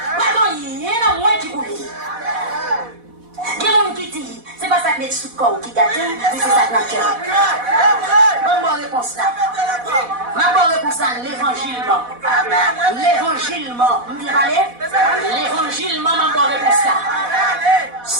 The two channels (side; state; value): left; late; 4.1 ms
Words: pas dans rien dans moins qui pour lui. Il y a un qui dit, c'est pas ça que met sous le corps qui gâte, mais c'est ça que notre cœur. Bonne réponse là. Ma bonne réponse là, l'évangile. L'évangile, bien parlé? L'évangile, ma bonne réponse là.